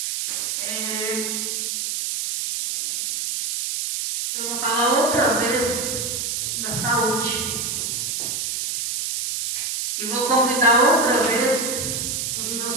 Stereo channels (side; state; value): right; noise; hiss, 2 dB below the sound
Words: Eu vou falar outra vez da saúde. E vou convidar outra vez os